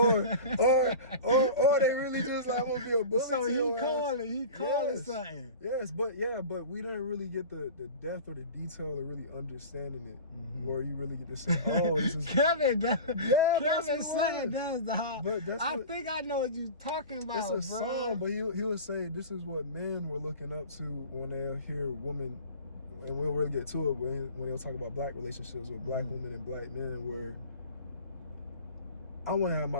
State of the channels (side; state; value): both; inverted; correlation -0.36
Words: they really just like, I'm gonna be a bully. So he called it something. Yes, but we didn't really get the depth or the detail of really understanding it, where you really get to say, oh, this is Kevin. Kevin saying that's the hard. But I think I know what you're talking about. It's a song, but he would say this is what men were looking up to when they hear women, and we'll really get to it when they'll talk about black relationships with black women and black men, where I want to have